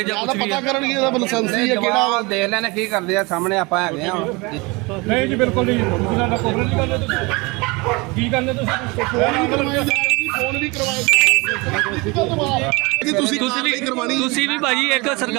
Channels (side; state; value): left; quieter; 26.0 dB